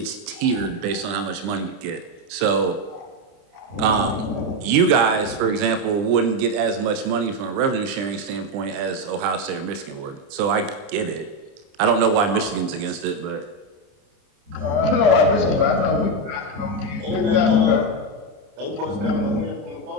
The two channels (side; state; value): left; late; 30 ms